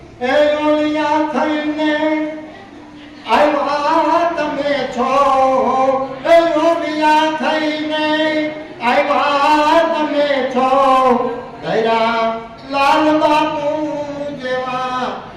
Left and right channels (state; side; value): identical; both; correlation 1.00